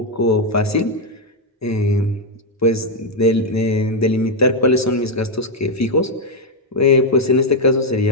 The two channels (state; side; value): normal; both; correlation 0.01